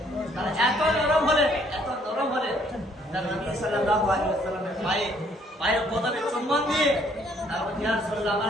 তারা এত নরম হলেন তারা নবী সাল্লাল্লাহু আলাইহি ওয়াসাল্লামের পায়ের পদবে চুম্বন দিয়ে তারপর ইয়া রাসূলুল্লাহ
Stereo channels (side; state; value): both; normal; correlation 0.64